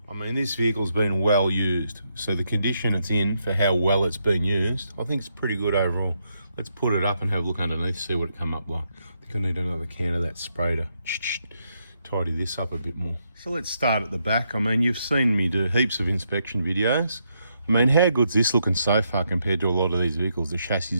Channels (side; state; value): both; inverted; correlation -0.79